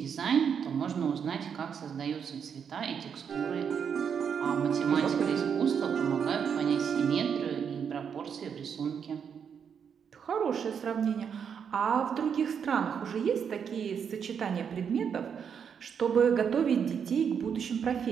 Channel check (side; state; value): left; quieter; 7.3 dB